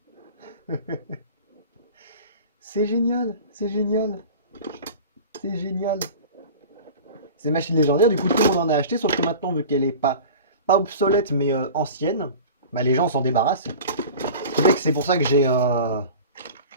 C'est génial, c'est génial, c'est génial. C'est une machine légendaire, du coup tout le monde en a acheté, sauf que maintenant, vu qu'elle est pas obsolète mais ancienne, bah, les gens s'en débarrassent. C'est pour ça que j'ai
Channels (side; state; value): both; inverted; correlation -0.37